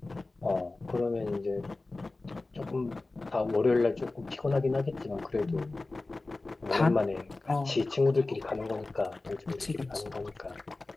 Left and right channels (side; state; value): right; quieter; 3.2 dB